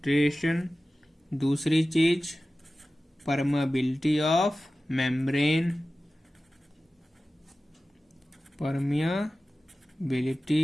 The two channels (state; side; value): normal; both; correlation 0.96